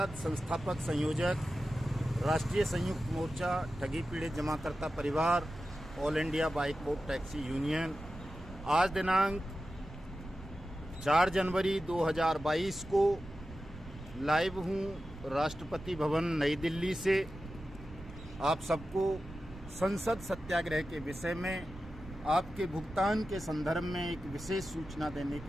संस्थापक संयोजक, राष्ट्रीय संयुक्त मोर्चा ठगी पीड़ित जमाकर्ता परिवार, ऑल इंडिया बाइकबोट टैक्सी यूनियन। आज दिनांक 4 जनवरी 2022 को लाइव हूँ राष्ट्रपति भवन नई दिल्ली से। आप सबको संसद सत्याग्रह के विषय में आपके भुगतान के संदर्भ में एक विशेष सूचना देने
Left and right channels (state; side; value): noise; right; rumble, 15 dB below the sound